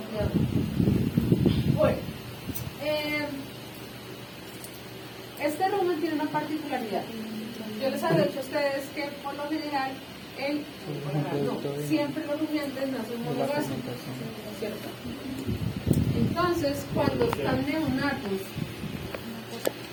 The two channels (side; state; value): both; identical; correlation 1.00